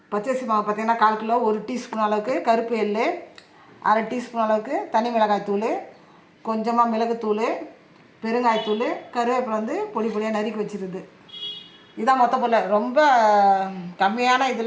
பச்சரிசி மாவு பார்த்தீங்கன்னா 1/4 கிலோ. 1 டீஸ்பூன் அளவுக்கு கருப்பு எள், 1/2 டீஸ்பூன் அளவுக்கு தனி மிளகாய் தூள், கொஞ்சமாக மிளகுத்தூள், பெருங்காயத்தூள், கருவேப்பிலை வந்து பொடி பொடியாக நறுக்கி வச்சுருது. இதான் மொத்த பொருள். ரொம்ப கம்மியான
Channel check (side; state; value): both; identical; correlation 1.00